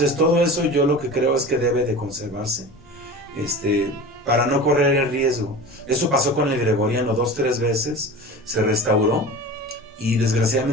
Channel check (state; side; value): normal; both; correlation 0.34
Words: todo eso yo lo que creo es que debe de conservarse para no correr el riesgo. Eso pasó con el gregoriano 2-3 veces, se restauró y